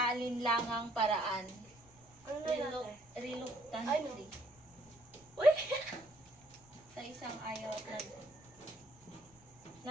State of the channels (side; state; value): left; noise; rumble, 25 dB below the sound